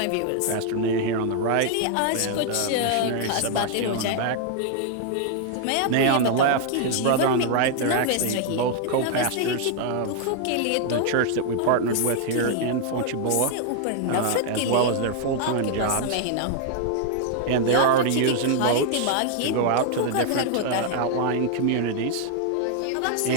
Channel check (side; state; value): both; different; correlation 0.00